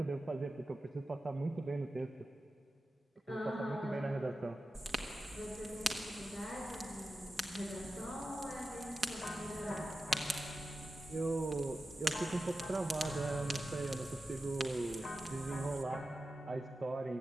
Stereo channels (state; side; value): normal; both; correlation 0.93